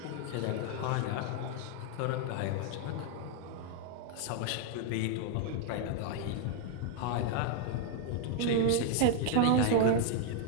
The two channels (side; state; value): both; different; correlation 0.00